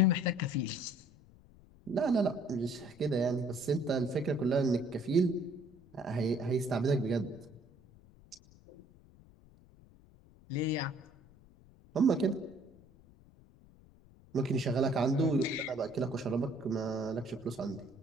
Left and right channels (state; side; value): noise; left; rumble, 25 dB below the sound